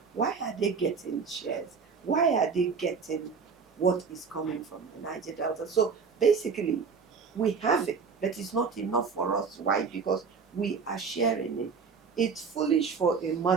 why are they getting shares? Why are they getting what is coming from the Niger Delta? So basically, we have it, but it's not enough for us. Why? Because we are sharing it. It's foolish for a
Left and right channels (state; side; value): quieter; left; 5.5 dB